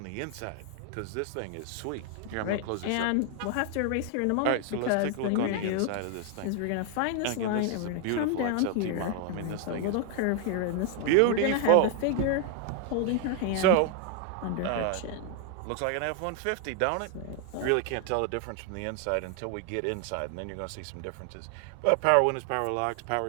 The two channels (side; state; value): both; different; correlation 0.00